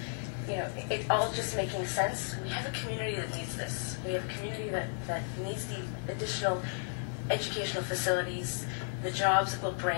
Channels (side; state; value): right; silent; digital silence